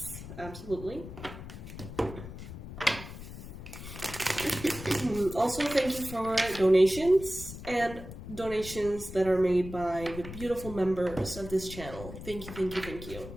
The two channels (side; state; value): left; noise; rumble, 12 dB below the sound